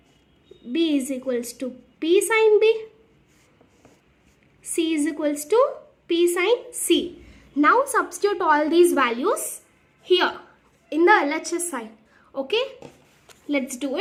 b is equals to p sine b, c is equals to p sine c. Now substitute all these values here in the LHS side. Okay, let's do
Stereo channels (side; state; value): both; identical; correlation 1.00